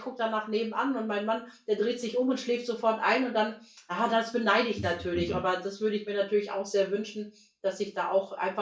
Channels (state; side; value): identical; both; correlation 1.00